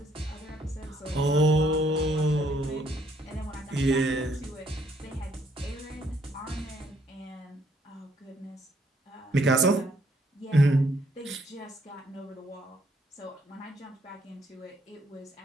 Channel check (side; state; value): both; normal; correlation 0.68